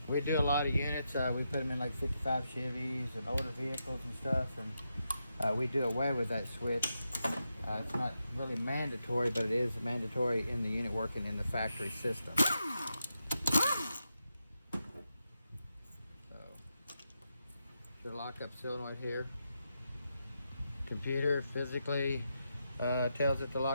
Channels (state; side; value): inverted; both; correlation -0.85